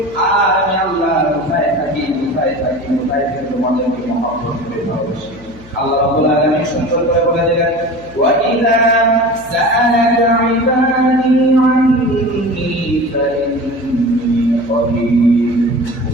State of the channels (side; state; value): left; noise; hum, 21 dB below the sound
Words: আর আমি আল্লাহ কোথায় থাকি তোমাদেরকে মহব্বত করে ভালোবাসি। আল্লাহ রাব্বুল আলামিন সুন্দর করে বলে দিলেন, ওয়া ইযা সাআলাকা ইবাদি আন্নী ফাইন্নী করিব